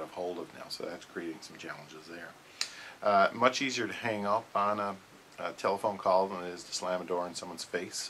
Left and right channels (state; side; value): identical; both; correlation 1.00